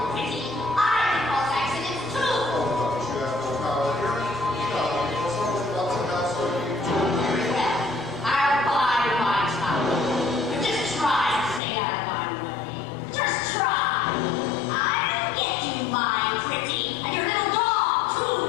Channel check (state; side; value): drops out; right; at 11.6 s